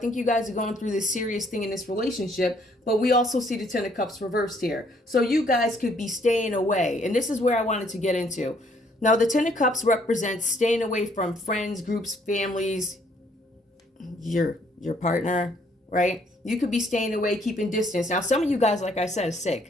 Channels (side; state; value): both; normal; correlation 0.65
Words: you guys are going through this serious thing in this relationship, but we also see the Ten of Cups reversed here. So you guys could be staying away. And this is where I wanted to get into. Now, the Ten of Cups represents staying away from friends, groups, families, your partner, right? You could be staying away, keeping distance. Now, some of you guys, like I said, are